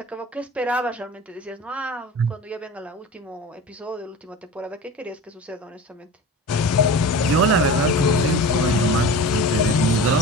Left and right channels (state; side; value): normal; both; correlation 0.34